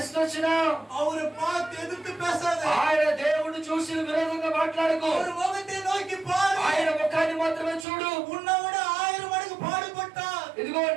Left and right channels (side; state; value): left; drops out; at 7.9 s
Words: వచ్చినా ఆయన దేవుడు చూసి విరోధంగా మాట్లాడకు. ఆయన ముఖాన్ని మాత్రమే చూడు. ఇదిగో